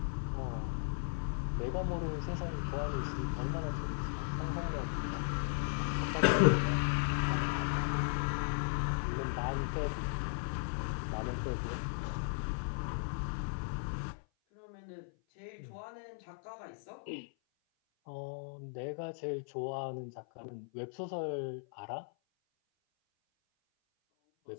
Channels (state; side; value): silent; right; 53 dB below the other